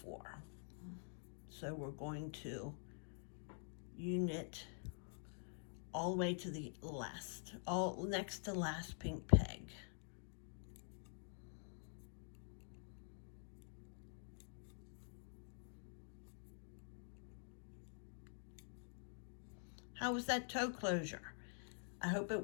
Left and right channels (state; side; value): silent; right; digital silence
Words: So we're going to unit all the way to the last, next to last pink peg. How was that toe closure? I hope it